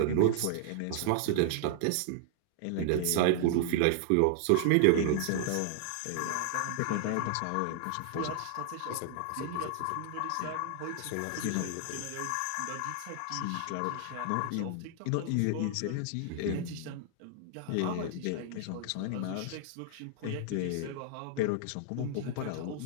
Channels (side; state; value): both; different; correlation 0.00